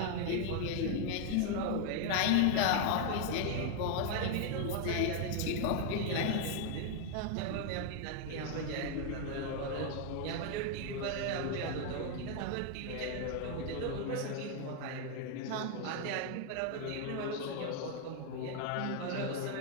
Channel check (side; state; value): both; different; correlation 0.00